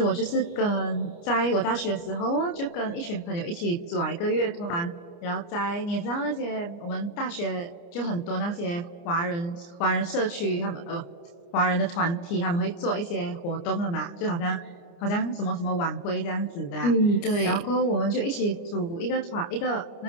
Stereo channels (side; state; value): right; late; 29 ms